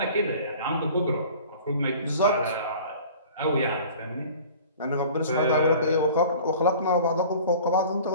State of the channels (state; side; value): inverted; both; correlation -0.45